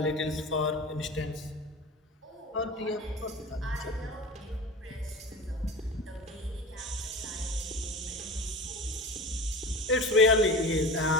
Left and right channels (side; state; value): both; normal; correlation 0.33